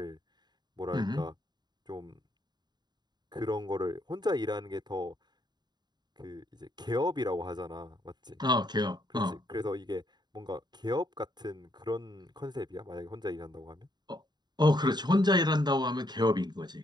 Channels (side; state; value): left; late; 0.21 ms